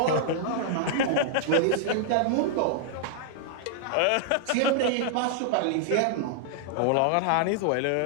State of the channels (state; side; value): different; both; correlation -0.01